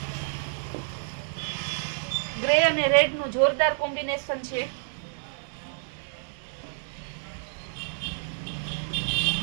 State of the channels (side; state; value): left; silent; digital silence